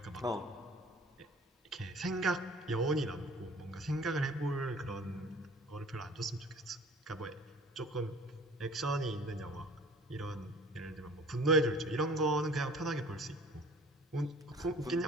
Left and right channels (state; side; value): normal; both; correlation 0.48